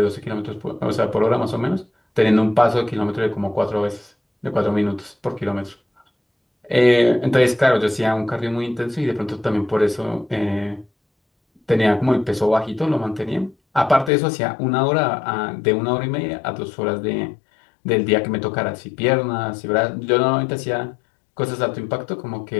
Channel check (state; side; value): drops out; right; at 14.1 s